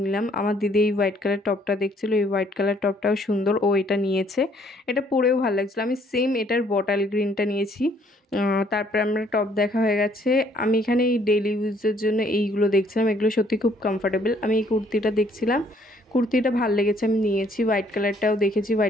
নিলাম। আমার দিদি এই হোয়াইট কালার টপটা দেখছিল, এই হোয়াইট কালার টপটাও সুন্দর, ও এটা নিয়েছে, এটা পরেও ভালো লাগছিলো। আমি সেম এটার বটল গ্রিনটা নিয়েছি। তারপরে আমরা টপ দেখা হয়ে গেছে। আমি এখানে এই ডেইলি ইউজের জন্য এইগুলো দেখছিলাম, এগুলো সত্যি খুব কমফোর্টেবল। আমি এই কুর্তিটা দেখছিলাম, কুর্তিটা ভালো লেগেছে, আমি নিয়েছি। হোয়াইট কালারটাও দেখেছি,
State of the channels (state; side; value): normal; both; correlation 0.64